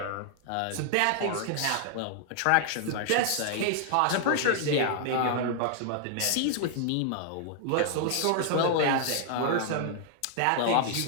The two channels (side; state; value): both; different; correlation 0.00